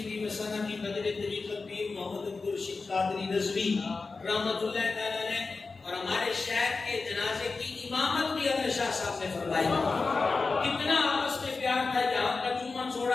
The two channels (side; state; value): right; quieter; 4.1 dB